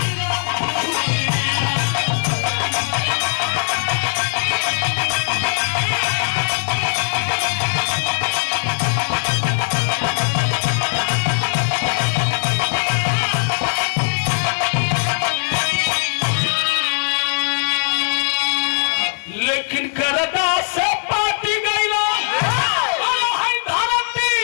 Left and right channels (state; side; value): silent; right; digital silence